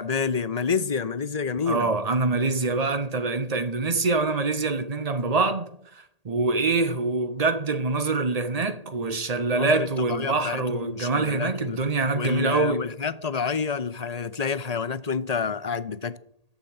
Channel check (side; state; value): left; late; 1.8 ms